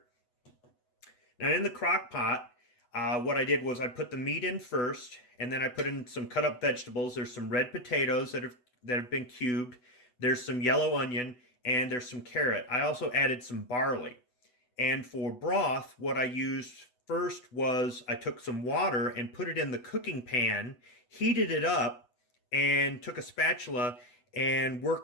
Now in the crock pot, what I did was I put the meat in first, and then I put in some cut up vegetables. There's some red potatoes that have been cubed. There's some yellow onion, and there's some carrot. I also added some barley. And for broth, what I used first was I took some water and put it in the cooking pan, heated it up, and took a spatula and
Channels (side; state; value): right; late; 8.1 ms